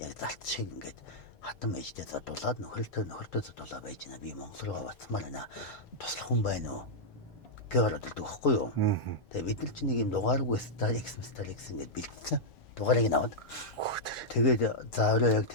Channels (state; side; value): normal; both; correlation -0.08